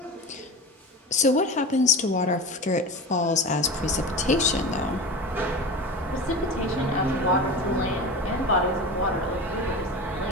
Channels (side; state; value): both; normal; correlation 0.29